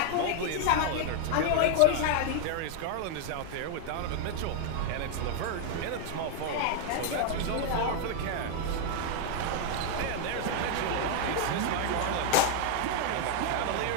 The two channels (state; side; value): different; both; correlation 0.00